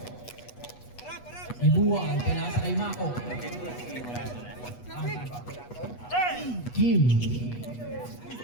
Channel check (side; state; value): right; late; 8.2 ms